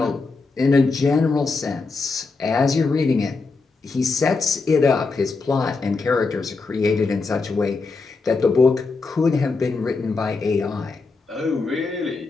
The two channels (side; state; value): right; quieter; 4.1 dB